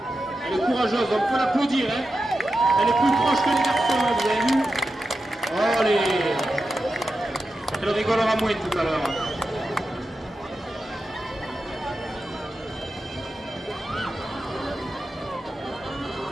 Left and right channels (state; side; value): normal; both; correlation 0.90